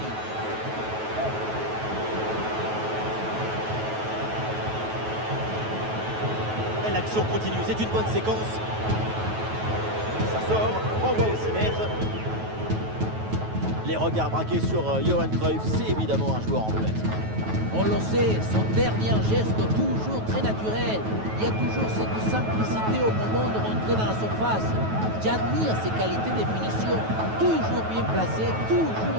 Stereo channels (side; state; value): left; late; 9.3 ms